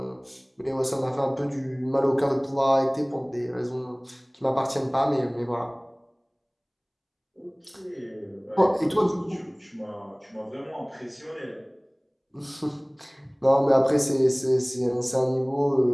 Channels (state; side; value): identical; both; correlation 1.00